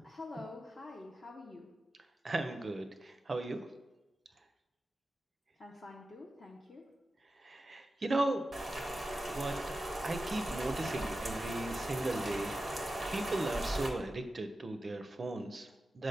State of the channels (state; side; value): normal; both; correlation 0.93